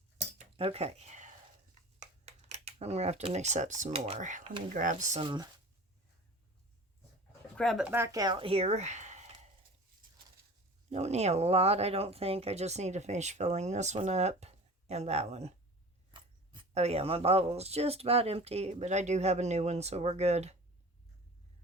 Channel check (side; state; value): both; normal; correlation 0.39